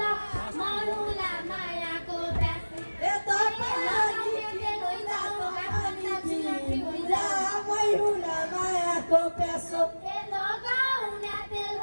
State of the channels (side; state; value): both; inverted; correlation -1.00